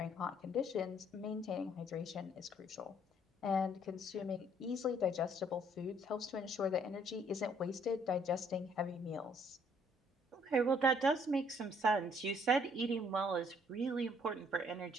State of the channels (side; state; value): both; normal; correlation 0.64